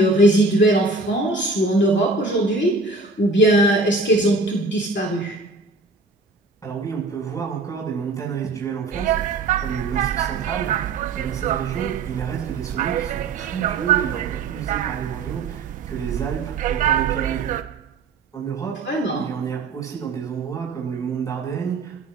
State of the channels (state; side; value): quieter; left; 3.4 dB